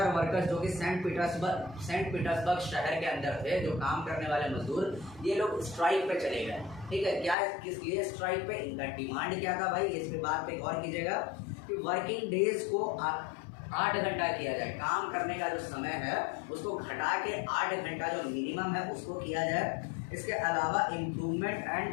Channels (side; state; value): right; drops out; at 7.4 s